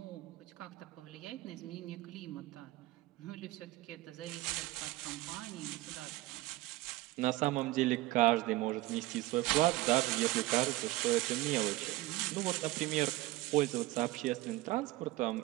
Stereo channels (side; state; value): left; quieter; 18.4 dB